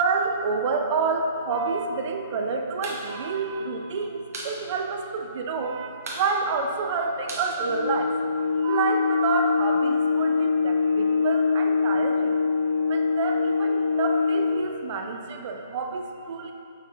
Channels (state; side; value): inverted; both; correlation -0.63